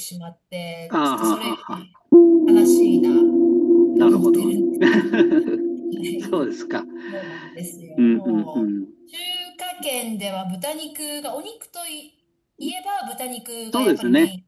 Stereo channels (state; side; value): identical; both; correlation 1.00